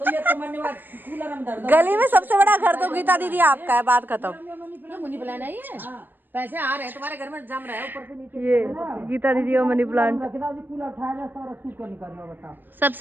गली में सबसे बड़ा घर तो गीता दीदी आपका है, बात खत्म। मनी प्लांट है ये, पैसे आ रहे हैं तुम्हारे घर में, जम रहे हैं ऊपर से नीचे। ये गीता दीदी का मनी प्लांट,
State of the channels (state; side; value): late; left; 0.092 ms